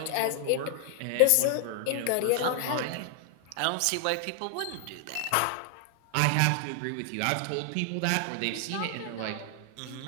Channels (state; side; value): different; both; correlation 0.00